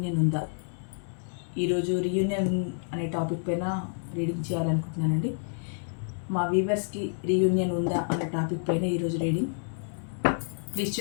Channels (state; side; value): silent; right; digital silence